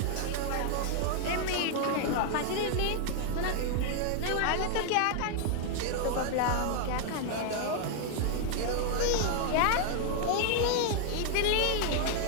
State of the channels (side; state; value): both; different; correlation 0.00